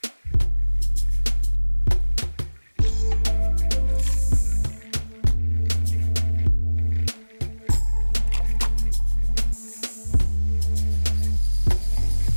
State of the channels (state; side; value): inverted; both; correlation -1.00